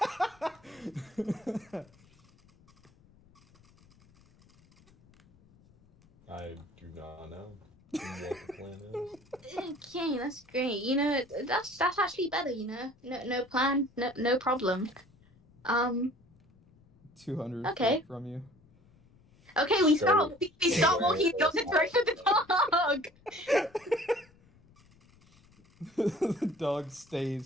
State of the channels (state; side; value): noise; left; rumble, 29 dB below the sound